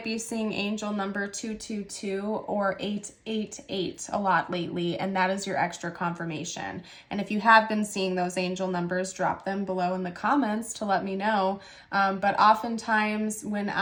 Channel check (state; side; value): identical; both; correlation 1.00